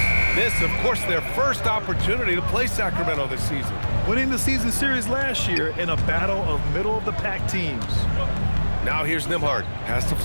This, of course, their first opportunity to play Sacramento this season. Winning the season series last year in a battle of middle-of-the-pack teams. Now here's Nembhard. Pass to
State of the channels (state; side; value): inverted; both; correlation -1.00